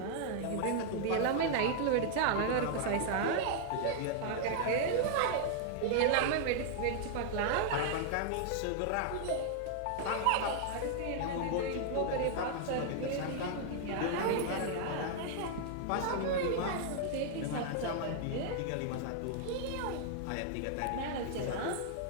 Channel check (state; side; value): different; both; correlation 0.00